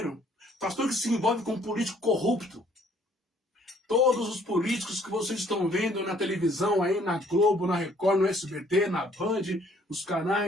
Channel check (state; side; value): normal; both; correlation 0.61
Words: pastor que se envolve com um político corrupto. Todos os políticos que vocês estão vendo na televisão, aí na Globo, na Record, no SBT, na Band, os